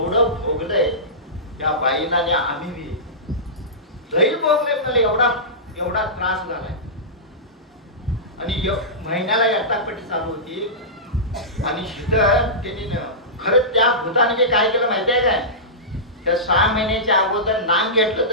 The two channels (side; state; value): both; normal; correlation -0.17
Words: भोगलंय त्या बाईला. आणि आम्ही बी लई भोगले मला. एवढा त्रास झालाय. आणि महिन्याला यटापट्टी चालू होती. आणि त्यांनी खरंच त्या भूताने काय केलं माहितीये काय, त्या 6 महिन्याच्या अगोदर नाम घेतलं.